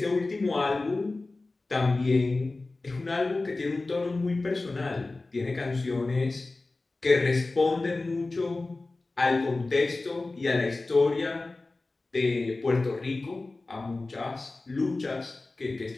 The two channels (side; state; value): right; quieter; 3.3 dB